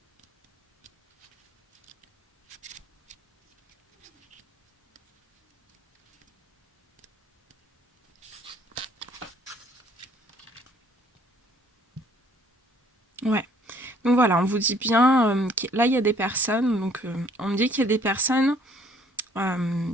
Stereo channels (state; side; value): normal; both; correlation 0.60